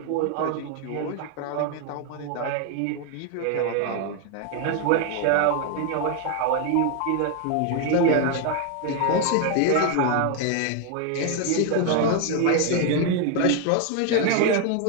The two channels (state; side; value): different; both; correlation 0.01